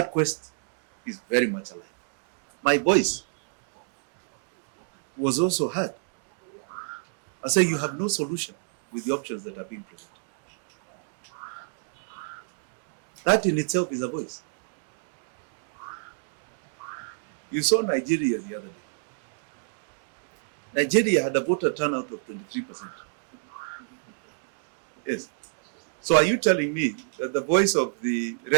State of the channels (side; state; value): left; silent; digital silence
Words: quest is very much alive. My voice was also heard. I say you have no solution with the options that are being presented. That in itself is a voice. You saw Nigeria the other day. Nigeria had a voter turnout of 23%. Yes. So are you telling me that the voice of the